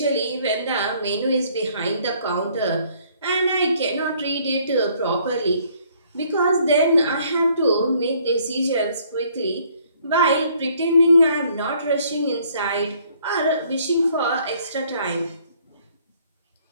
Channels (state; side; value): inverted; both; correlation -0.63